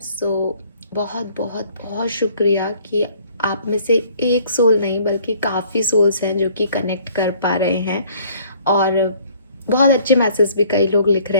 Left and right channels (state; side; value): inverted; both; correlation -0.58